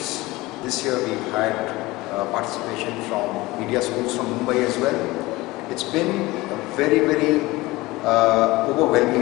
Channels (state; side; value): quieter; right; 20.3 dB